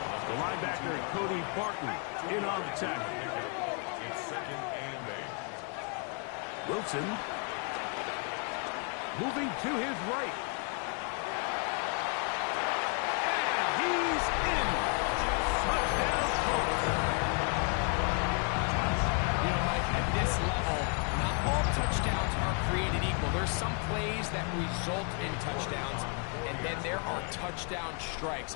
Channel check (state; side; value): quieter; right; 39.7 dB